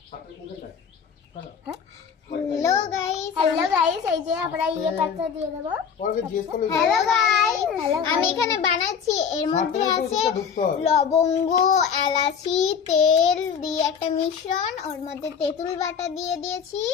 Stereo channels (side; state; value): right; quieter; 7.0 dB